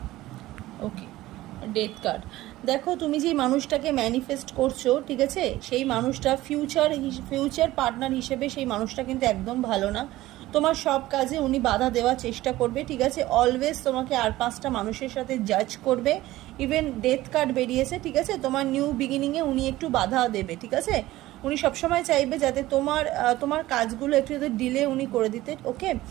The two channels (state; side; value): quieter; left; 16.7 dB